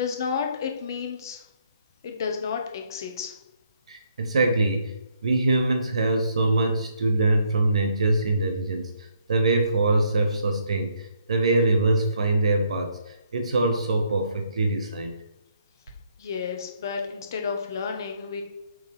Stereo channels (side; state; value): both; inverted; correlation -0.71